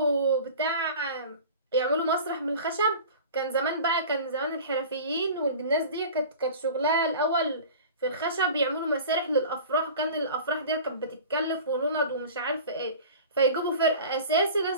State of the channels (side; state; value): both; inverted; correlation -0.38